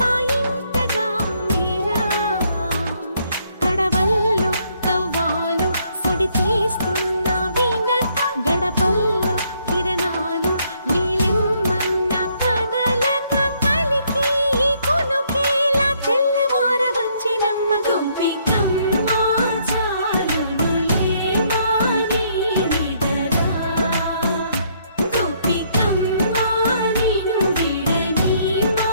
మీరా కడవల్లో కవ్వాలు సడి తీస్తున్న వినక గడపల్లో కిరణాలు నీలిమ్మన్న కదలక కలికి కొనుకేలా తెల్లవార వచ్చినమ్మ గోపికమ్మ చాలునులే మాని నిదరా గోపికమ్మ నిను విడని మా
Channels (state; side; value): inverted; both; correlation -0.69